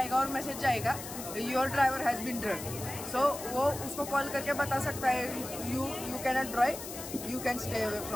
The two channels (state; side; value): noise; left; hiss, 10 dB below the sound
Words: और मैसेज जाएगा your driver has been drunk. So वो उसको कॉल करके बता सकता है you can not drive, you can stay away